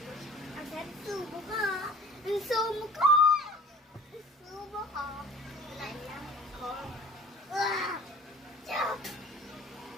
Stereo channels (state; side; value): normal; both; correlation 0.45